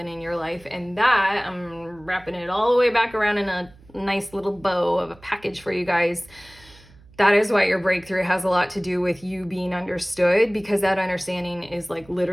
in your life. And that, I'm wrapping it all the way back around in a nice little bow of a package for you guys. That is why your breakthrough has a lot to do with you being understood, because that understanding is like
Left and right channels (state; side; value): noise; right; hum, 25 dB below the sound